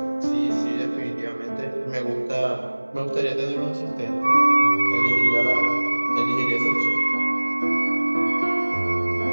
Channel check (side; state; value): both; inverted; correlation -1.00